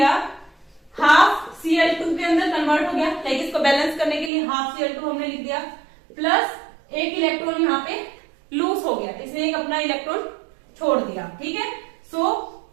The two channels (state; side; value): drops out; left; at 4.3 s